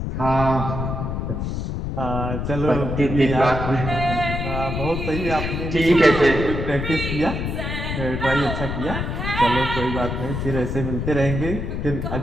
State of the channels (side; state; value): left; noise; rumble, 3 dB below the sound